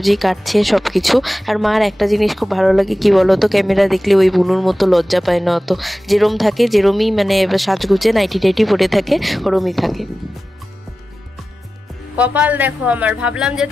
কাটছে সব কিছু। আর মার একটা জিনিস খুব ভালো লাগে কি বলো তো, ক্যামেরা দেখলে ওই বুনুর মতো লজ্জা পায় না অত, যেরম থাকে যেরমই মানে সাজগুজে নাইটি টাইটি পরে থাকে ওরমই থাকে। কপাল দেখো আমার, ভাবলাম যে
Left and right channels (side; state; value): both; normal; correlation 0.95